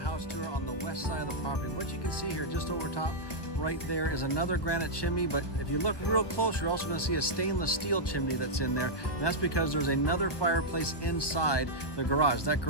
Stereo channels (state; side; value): late; right; 1.1 ms